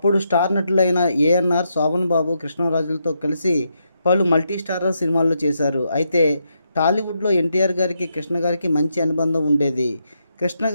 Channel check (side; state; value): both; inverted; correlation -0.81